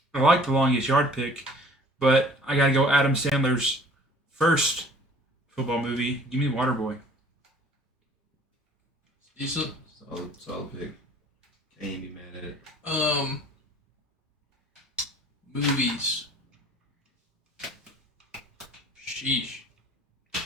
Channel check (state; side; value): normal; both; correlation 0.51